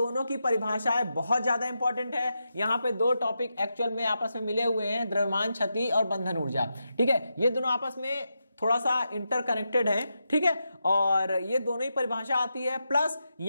की परिभाषाएं बहुत ज्यादा इंपॉर्टेंट है। यहाँ पे दो टॉपिक एक्चुअल में आपस में मिले हुए हैं, द्रव्यमान क्षति और बंधन ऊर्जा। ठीक है, ये दोनों आपस में थोड़ा सा इंटरकनेक्टेड है। ठीक है, और ये दोनों ही परिभाषा आती है, प्लस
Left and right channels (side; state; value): both; inverted; correlation -0.87